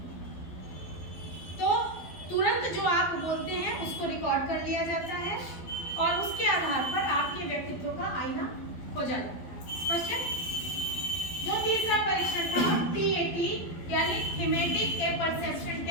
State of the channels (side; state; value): right; late; 12 ms